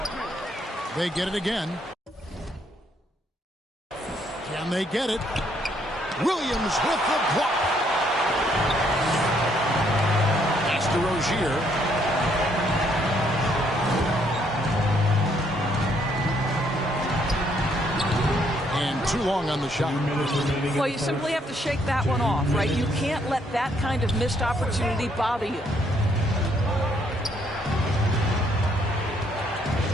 They get it again. Can they get it? Williams with the block. Pass to Rozier. Too long on the shot. Well, you simply have to shake that one off, right? You can't let that kind of missed opportunity bother you.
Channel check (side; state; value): both; normal; correlation 0.70